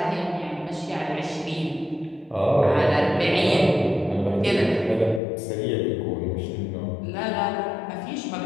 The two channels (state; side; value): drops out; right; at 5.2 s